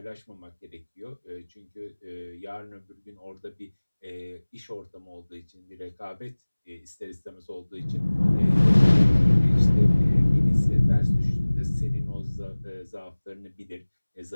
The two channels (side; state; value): both; inverted; correlation -1.00